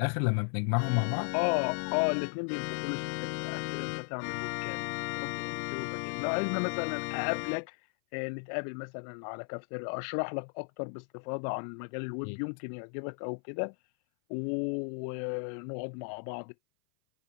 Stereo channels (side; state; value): right; silent; 55 dB below the other